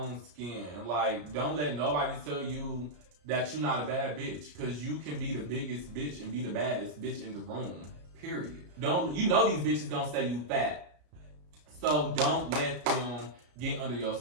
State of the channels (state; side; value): late; left; 34 ms